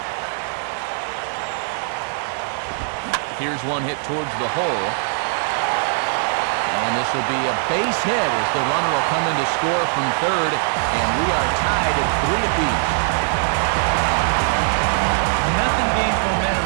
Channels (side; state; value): left; silent; 63 dB below the other